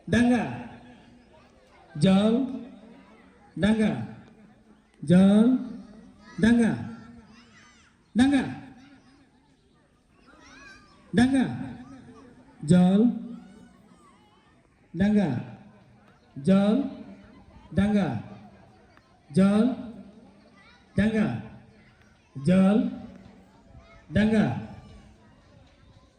ডাঙ্গা জল ডাঙ্গা জল ডাঙ্গা ডাঙ্গা ডাঙ্গা জল ডাঙ্গা জল ডাঙ্গা জল ডাঙ্গা জল ডাঙ্গা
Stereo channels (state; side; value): identical; both; correlation 1.00